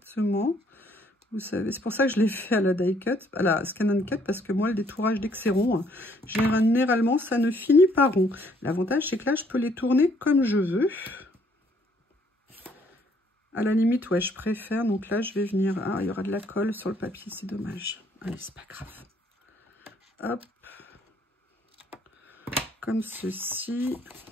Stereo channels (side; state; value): both; normal; correlation 0.65